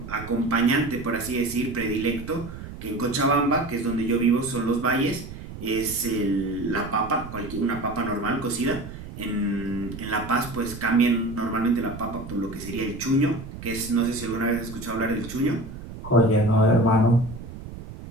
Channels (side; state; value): right; noise; rumble, 12 dB below the sound